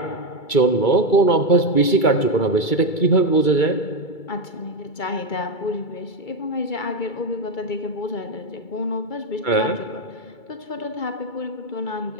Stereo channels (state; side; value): late; right; 2.3 ms